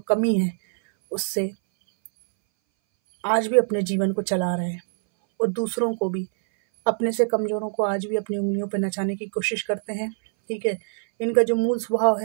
कमी है उससे आज भी अपने जीवन को चला रहे हैं। और दूसरों को भी, अपने से कमज़ोरों को आज भी अपनी उंगलियों पर नचाने की कोशिश करते हैं। ठीक है, इनका जो मूल स्वभाव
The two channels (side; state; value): left; silent; 61 dB below the other